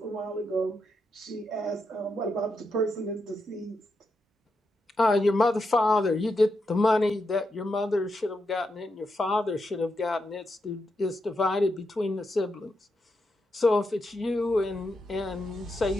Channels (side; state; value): both; normal; correlation 0.84